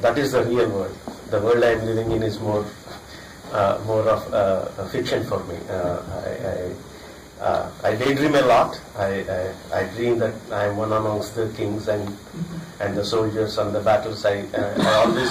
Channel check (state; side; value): identical; both; correlation 1.00